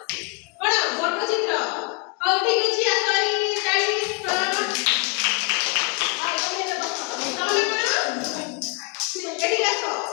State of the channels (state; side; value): quieter; right; 32.9 dB